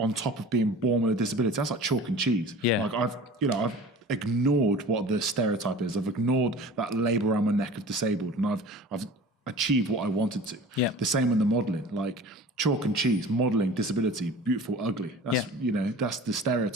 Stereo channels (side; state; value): both; normal; correlation 0.40